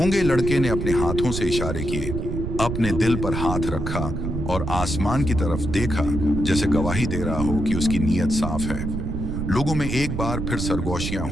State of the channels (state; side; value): noise; right; rumble, 3 dB below the sound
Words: लड़के ने अपने हाथों से इशारे किए, अपने दिल पर हाथ रखा और आसमान की तरफ देखा, जैसे गवाही दे रहा हो कि उसकी नीयत साफ है। लोगों में एक बार फिर सरगोशियां